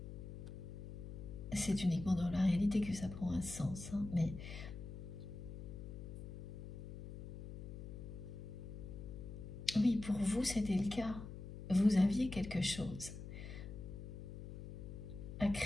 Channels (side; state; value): left; noise; hum, 9 dB below the sound